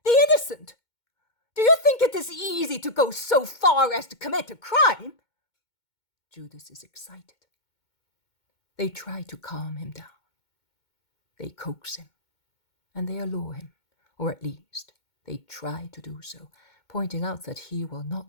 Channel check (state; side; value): late; right; 2.2 ms